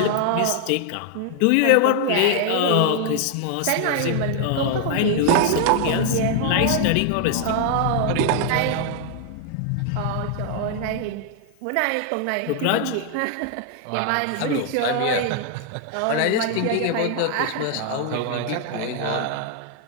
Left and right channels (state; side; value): different; both; correlation 0.00